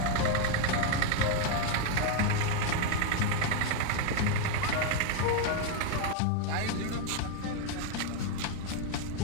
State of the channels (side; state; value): both; different; correlation 0.01